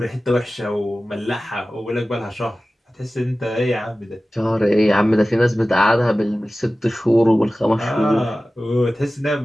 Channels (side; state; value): both; normal; correlation 0.96